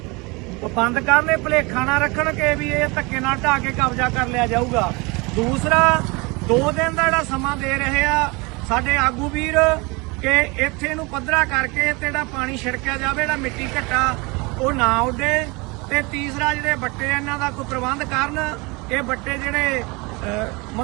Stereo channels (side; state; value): left; quieter; 26.8 dB